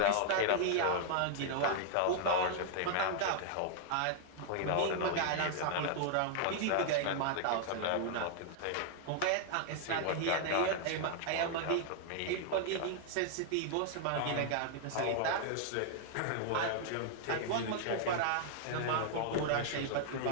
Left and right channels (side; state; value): both; different; correlation 0.00